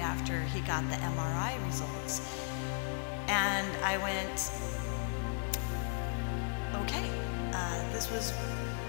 he got the MRI results. And I went, okay,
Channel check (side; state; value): right; silent; digital silence